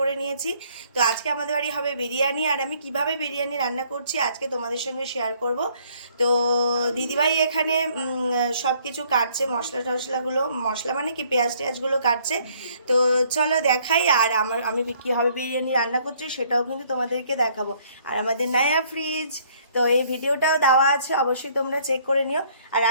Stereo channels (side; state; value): both; inverted; correlation -0.63